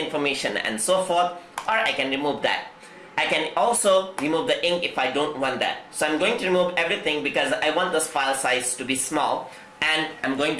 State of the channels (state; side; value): identical; both; correlation 1.00